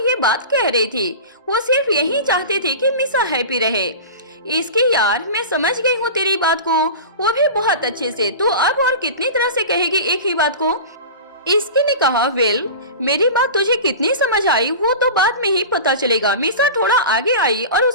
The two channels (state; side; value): inverted; both; correlation -0.31